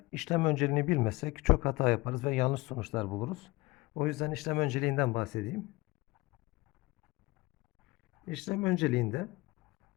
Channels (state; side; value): quieter; right; 22.3 dB